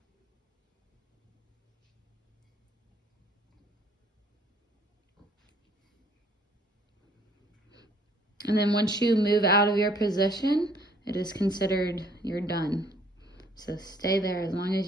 And then once you move out of your position, it is considered you're done. So stay there as long as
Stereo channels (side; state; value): both; normal; correlation 0.61